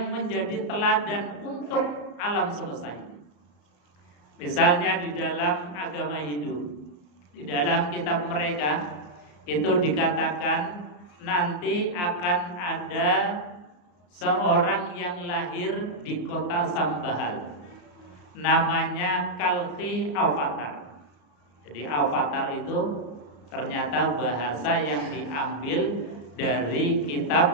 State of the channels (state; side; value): late; right; 34 ms